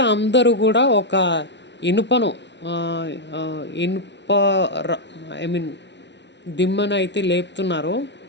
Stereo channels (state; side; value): late; right; 0.51 ms